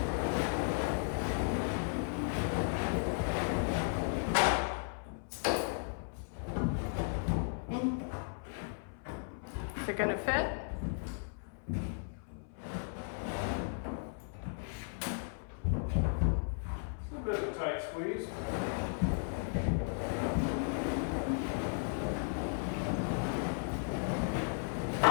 Is it gonna fit? It's a bit of a tight squeeze.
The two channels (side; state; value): right; silent; 54 dB below the other